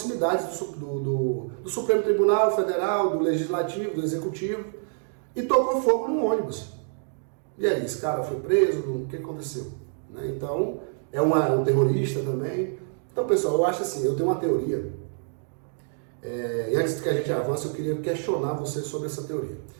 do Supremo Tribunal Federal, do Legislativo, do Executivo, e tocou fogo no ônibus. E aí, esse cara foi preso, o que aconteceu? Né? Então, é um terrorista também. Então, pessoal, eu acho assim, eu tenho uma teoria, e antes que a gente avance, eu queria questionar você sobre essa teoria.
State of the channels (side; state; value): left; silent; digital silence